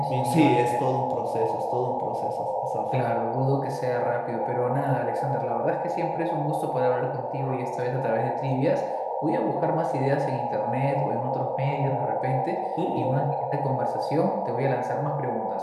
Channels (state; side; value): identical; both; correlation 1.00